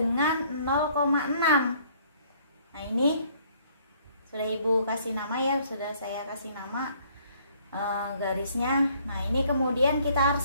0,6. Nah, ini sudah Ibu kasih nama ya, sudah saya kasih nama garisnya. Nah, ini kemudian kita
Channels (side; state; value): both; inverted; correlation -0.61